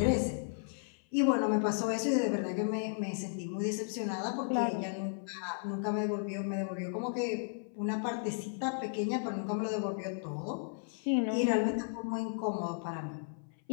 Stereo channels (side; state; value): right; silent; 55 dB below the other